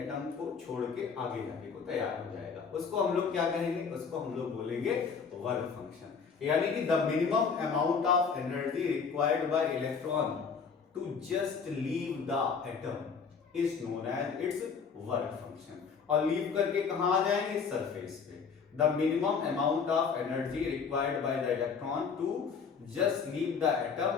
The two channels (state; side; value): quieter; right; 5.9 dB